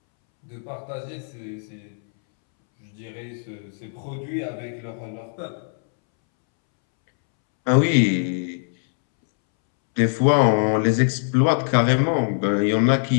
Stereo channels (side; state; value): right; silent; 64 dB below the other